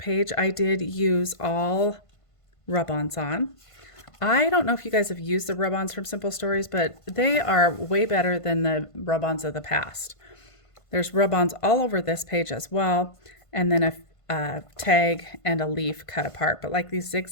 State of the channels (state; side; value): late; right; 1.5 ms